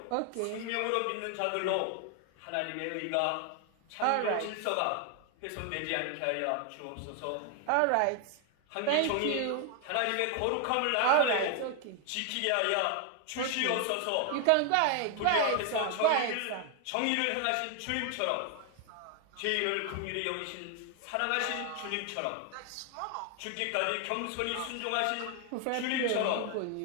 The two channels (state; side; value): different; both; correlation 0.00